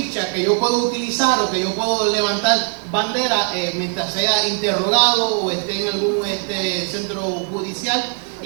que yo puedo utilizar o que yo puedo levantar bandera mientras sea interrogado o esté en algún centro judicial,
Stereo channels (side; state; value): left; quieter; 38.1 dB